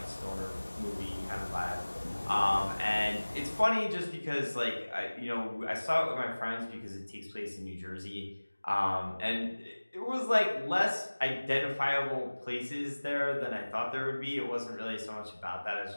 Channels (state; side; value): inverted; both; correlation -1.00